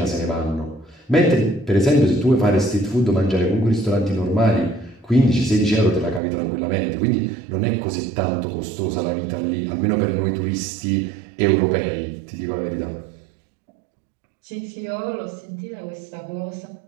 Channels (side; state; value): left; drops out; at 6.2 s